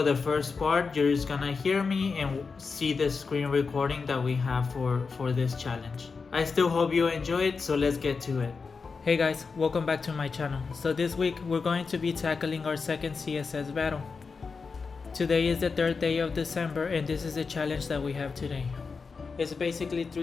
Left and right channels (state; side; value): quieter; right; 4.9 dB